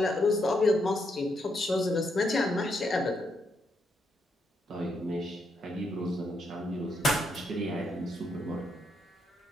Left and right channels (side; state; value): both; normal; correlation 0.78